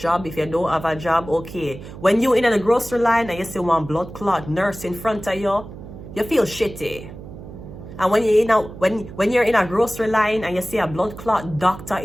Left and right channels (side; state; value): right; noise; hum, 14 dB below the sound